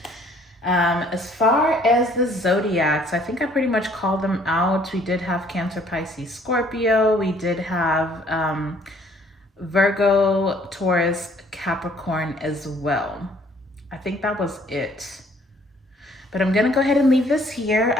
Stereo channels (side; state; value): both; normal; correlation 0.60